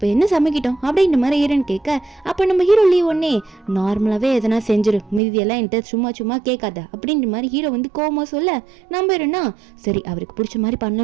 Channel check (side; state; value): left; drops out; at 5.2 s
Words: என்ன சமைக்கிட்டோம் அப்படின்ற மாதிரி ஹீரோன்னு கேட்க, அப்போ நம்ம ஹீரோ லீவ் ஒன்னே நார்மலாவே எதனா செஞ்சிரு, மீதியெல்லாம் என்கிட்ட சும்மா கேட்காத அப்படின்ற மாதிரி ஹீரோ வந்து கோவமா சொல்ல, நம்ம ஹீரோனா சரி அவருக்கு பிடிச்ச மாதிரி